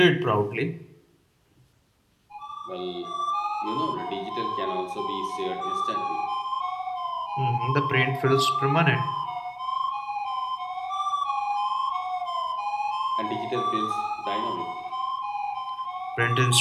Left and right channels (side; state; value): both; identical; correlation 1.00